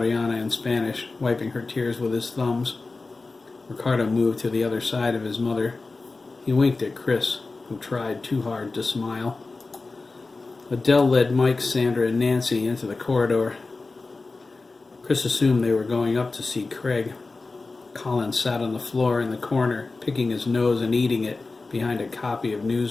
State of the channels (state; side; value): quieter; right; 3.7 dB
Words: in Spanish, wiping her tears with his thumbs. Ricardo moved to the other side of his mother. He winked at Chris, who tried too hard to smile. Adele led Mike, Sandra, and Nancy into the corridor. Chris assumed they were going up to see Craig. Colin sat on the floor in the corner, picking his nose and eating it behind a copy of